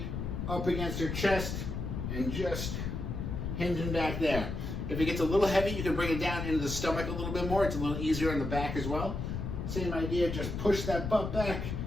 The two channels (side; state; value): left; noise; rumble, 4 dB below the sound